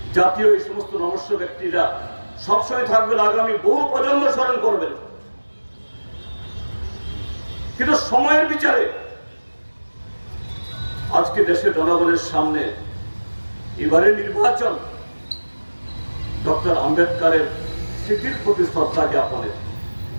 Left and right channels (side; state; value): both; inverted; correlation -1.00